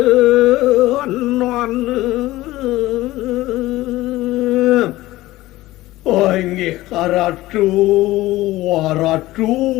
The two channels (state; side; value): quieter; right; 17.4 dB